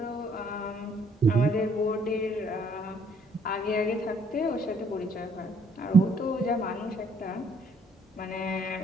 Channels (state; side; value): normal; both; correlation 0.64